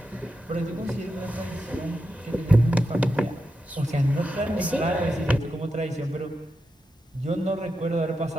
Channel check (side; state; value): both; normal; correlation 0.88